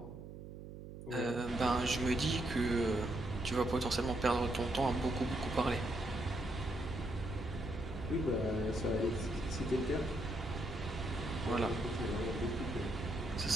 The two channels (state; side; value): noise; right; hum, 12 dB below the sound